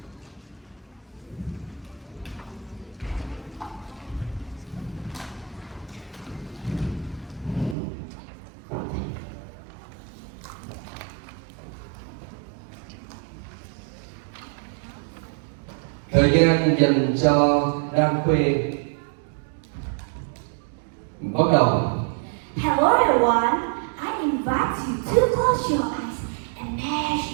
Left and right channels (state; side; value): drops out; left; at 7.8 s